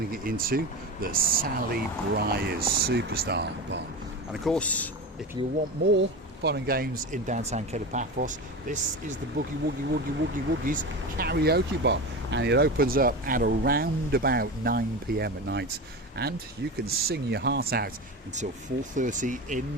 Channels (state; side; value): normal; both; correlation 0.25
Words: it into the Sally Briars Superstar Bar. And of course, if you want more fun and games in downtown Kato Paphos, this is the Boogie Woogie Woogie Woogie Woogies karaoke bar, and it opens up at around about 9 p.m. at night, and you can sing your heart out until 4:30 in